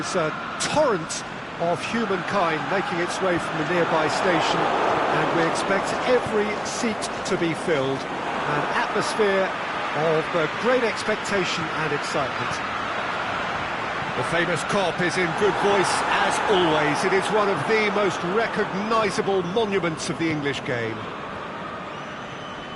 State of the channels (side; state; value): both; identical; correlation 1.00